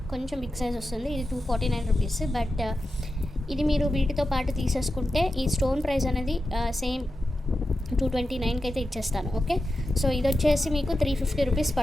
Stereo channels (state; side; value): normal; both; correlation 0.91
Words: బిగ్ సైజ్ వస్తుంది. ఇది 249 రూపీస్. బట్ ఇది మీరు వీటితో పాటు తీసేసుకుంటే ఈ స్టోన్ ప్రైస్ అనేది సేమ్ 229కి అయితే ఇచ్చేస్తాను. ఓకే, సో ఇది వచ్చేసి మీకు 350 రూపీస్